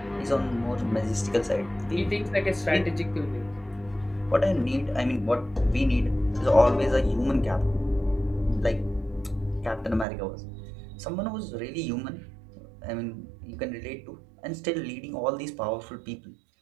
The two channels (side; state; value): left; drops out; at 10.1 s